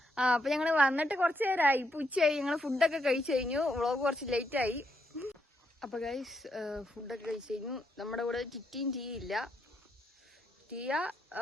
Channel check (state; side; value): normal; both; correlation 0.78